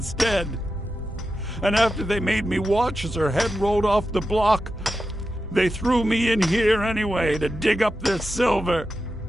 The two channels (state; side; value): normal; both; correlation 0.90